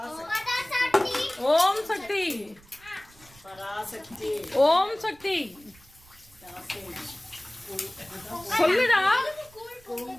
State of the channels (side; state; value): right; noise; rumble, 26 dB below the sound